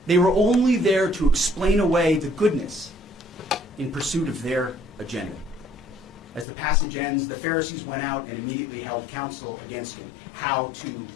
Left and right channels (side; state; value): right; drops out; at 6.5 s